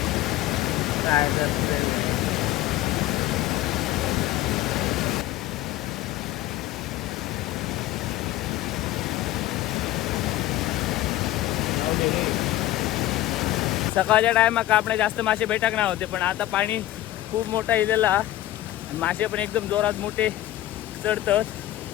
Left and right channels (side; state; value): right; quieter; 15.0 dB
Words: सकाळच्या टायमाक आपले जास्त मासे भेटक नाही होते पण आता पाणी खूप मोठा इलेला आणि मासे पण एकदम जोरात मोठे चढतात.